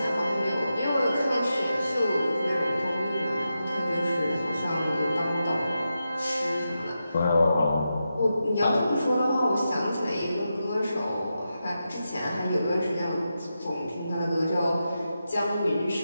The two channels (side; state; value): both; inverted; correlation -0.89